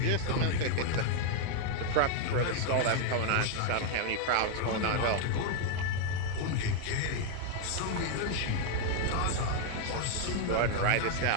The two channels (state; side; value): different; both; correlation 0.00